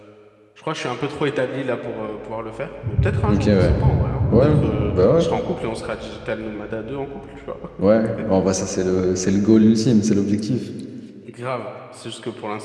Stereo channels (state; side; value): identical; both; correlation 1.00